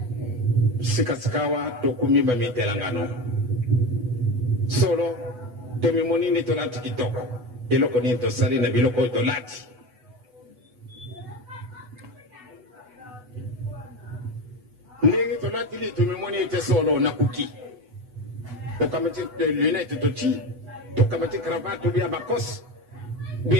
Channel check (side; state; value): left; late; 8.1 ms